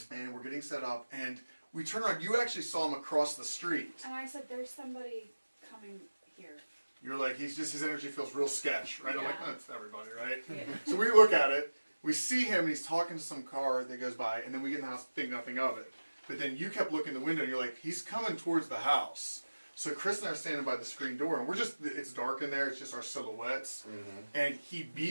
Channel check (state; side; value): inverted; both; correlation -1.00